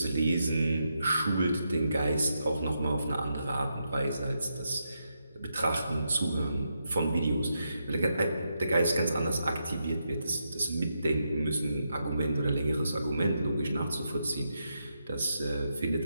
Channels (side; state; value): both; inverted; correlation -0.83